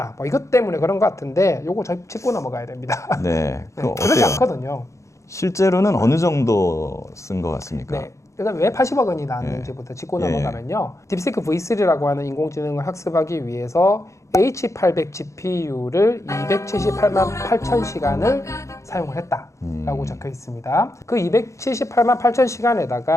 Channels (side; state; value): right; late; 0.15 ms